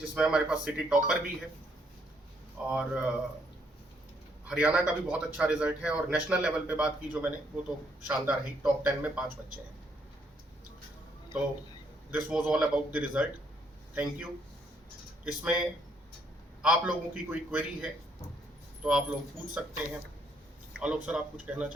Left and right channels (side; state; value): both; normal; correlation 0.71